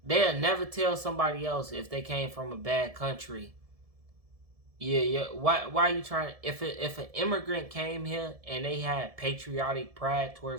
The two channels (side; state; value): left; late; 1.7 ms